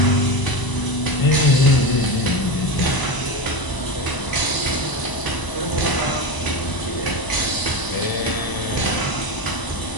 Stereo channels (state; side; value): late; right; 1.0 ms